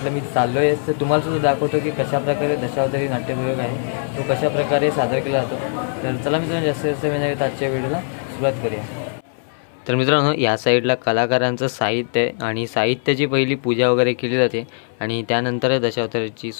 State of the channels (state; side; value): silent; right; 65 dB below the other